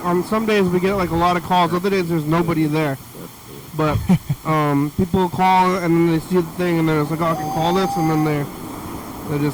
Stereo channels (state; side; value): identical; both; correlation 1.00